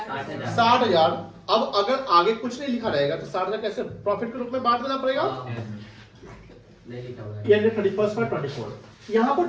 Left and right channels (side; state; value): both; identical; correlation 1.00